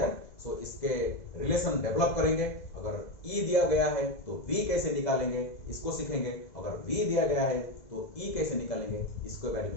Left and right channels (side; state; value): right; late; 2.0 ms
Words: So इसके relation develop करेंगे। अगर E दिया गया है तो V कैसे निकालेंगे, इसको सीखेंगे। अगर V दिया गया है तो E कैसे निकालेंगे, इसके बारे